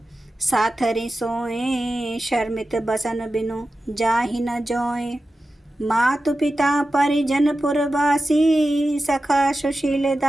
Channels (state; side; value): normal; both; correlation 0.93